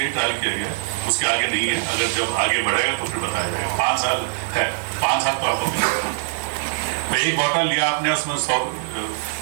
ट्रायल किया गया, उसके आगे नहीं है। अगर जब आगे बढ़ेगा तो फिर बताया जाएगा। 5 साल है, 5 साल तो आपको मिलेगा। तो एक बॉटल लिया आपने, उसमें 100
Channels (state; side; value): silent; left; 64 dB below the other